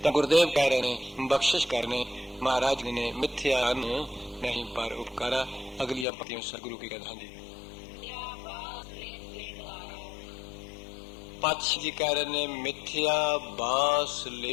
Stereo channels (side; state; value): right; drops out; at 6.1 s